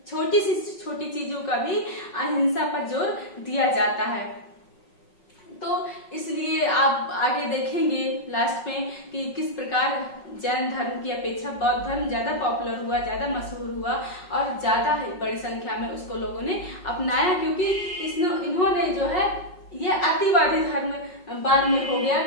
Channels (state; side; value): late; right; 5.4 ms